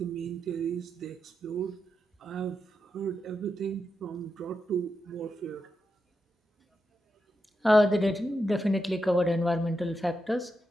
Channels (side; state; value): both; normal; correlation 0.86